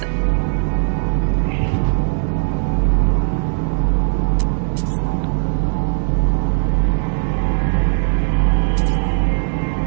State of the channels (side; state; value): left; silent; digital silence